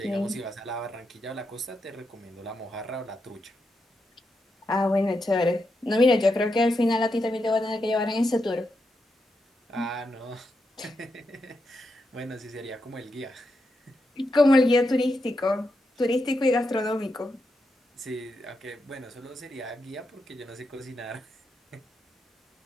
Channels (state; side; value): normal; both; correlation 0.85